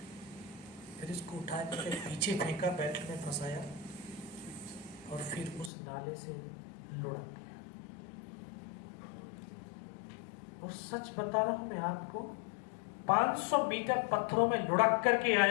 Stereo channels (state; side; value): drops out; right; at 5.7 s